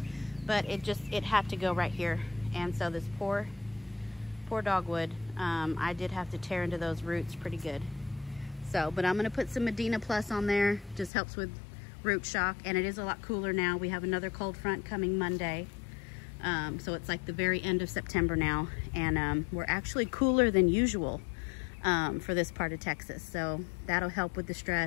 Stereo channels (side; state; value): right; drops out; at 11.1 s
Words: But it had to go right here. And so this poor dogwood I did have to tear into those roots pretty good. So, but I'm gonna put some Medina Plus on there. Just helps with root shock, and it is a lot cooler now. We have another cold front coming Monday. So it's like the very end of September now, and we're actually cooler than usual for this part of Texas. So that'll help with the